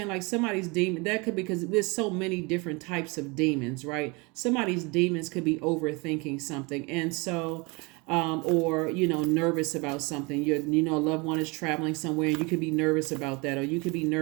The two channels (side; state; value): left; quieter; 27.8 dB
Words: Like somebody's demon, that could be, because there's so many different types of demons, right? Somebody's demons could be overthinking something. And so, or, nervous about something. A loved one is traveling somewhere and you could be nervous about that. Or you could be